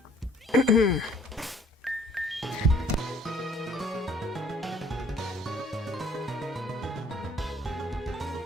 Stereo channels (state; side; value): normal; both; correlation 0.59